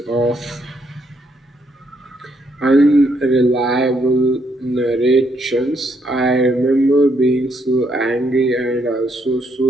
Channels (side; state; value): both; normal; correlation 0.73